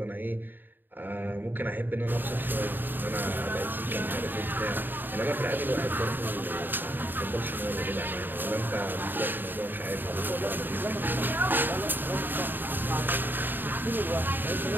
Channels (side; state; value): left; late; 0.093 ms